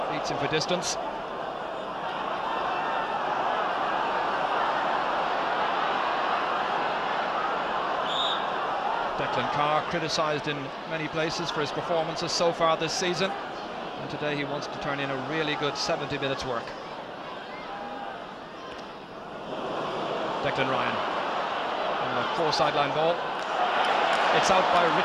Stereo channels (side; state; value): both; identical; correlation 1.00